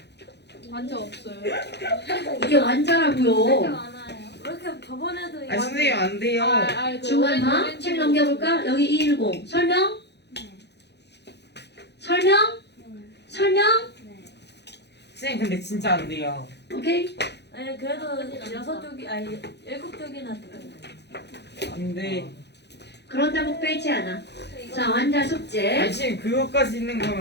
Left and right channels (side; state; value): right; late; 0.50 ms